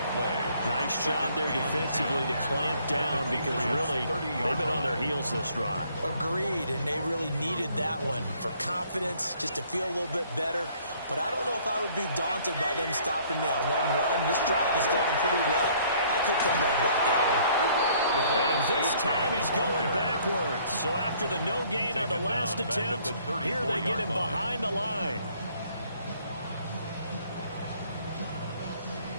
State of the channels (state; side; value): inverted; both; correlation -0.61